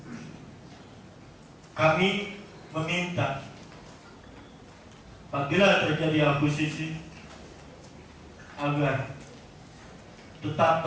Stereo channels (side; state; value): both; identical; correlation 1.00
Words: kami meminta apabila terjadi akuisisi agar tetap